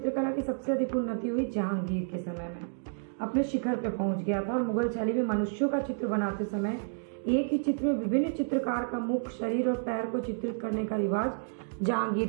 की सबसे अधिक उन्नति हुई जहांगीर के समय में। अपने शिखर पे पहुंच गया था, और मुगल शैली में मनुष्यों का चित्र बनाते समय एक ही चित्र में विभिन्न चित्रकार का मुख, शरीर और पैर को चित्रित करने का रिवाज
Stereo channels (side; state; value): left; silent; digital silence